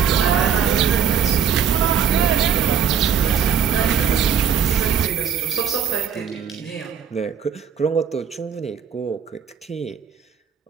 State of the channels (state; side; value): quieter; left; 8.1 dB